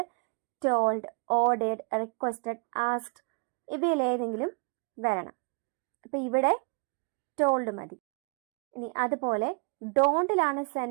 ടോൾഡ്, ഓർഡേഡ്, റിക്വസ്റ്റഡ്, ആസ്ക്ഡ് ഇവയിലേതെങ്കിലും വരണം. അപ്പൊ ഇവിടെ ടോൾഡ് മതി. ഇനി അതുപോലെ ഡോണ്ടിലാണ്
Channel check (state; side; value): quieter; left; 33.5 dB